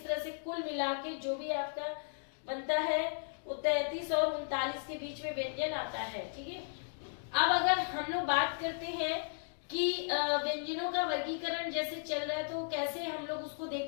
तरह से कुल मिला के जो भी आपका बनता है वो 33 और 39 के बीच में व्यंजन आता है। ठीक है, अब अगर हम लोग बात करते हैं कि व्यंजनों का वर्गीकरण जैसे चल रहा है तो कैसे हम लोग उसको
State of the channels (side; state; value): right; silent; digital silence